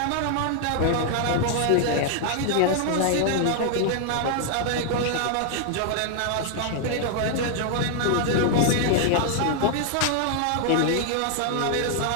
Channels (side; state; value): both; different; correlation 0.00